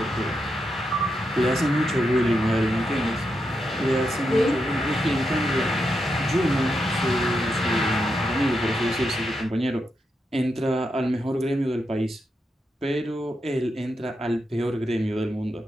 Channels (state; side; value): normal; both; correlation 0.84